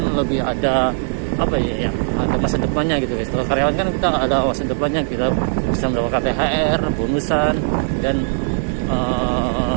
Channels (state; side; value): silent; left; 65 dB below the other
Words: lebih ada apa ya, ada masa depannya gitu guys. Kalau karyawan kan kita ada masa depannya, kita bisa mendapatkan THR, bonusan, dan